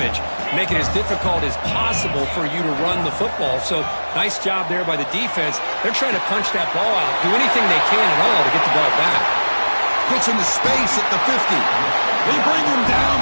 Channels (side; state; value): both; inverted; correlation -1.00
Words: make it as difficult as possible for you to run the football. So nice job there by the defense. They're trying to punch that ball out, do anything they can at all to get the ball back. Gets into space at the 50. They bring him down,